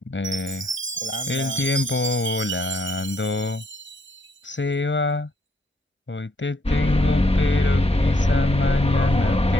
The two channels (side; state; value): both; normal; correlation 0.71